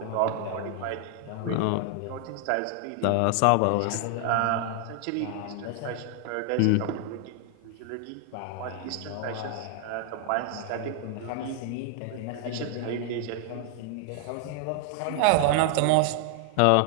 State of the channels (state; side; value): different; both; correlation 0.00